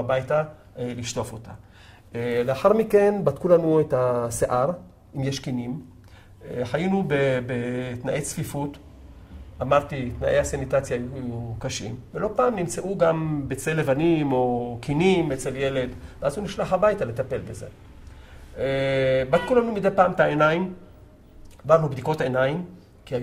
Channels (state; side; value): identical; both; correlation 1.00